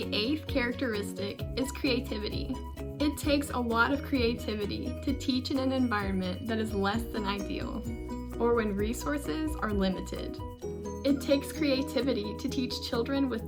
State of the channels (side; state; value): both; identical; correlation 1.00